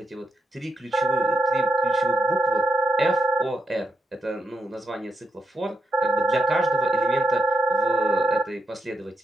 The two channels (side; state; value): both; normal; correlation 0.81